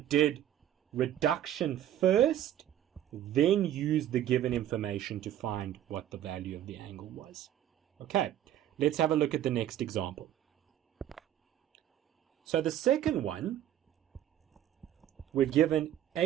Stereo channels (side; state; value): left; quieter; 11.4 dB